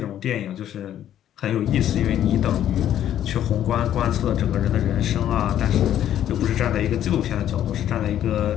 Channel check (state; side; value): quieter; right; 11.1 dB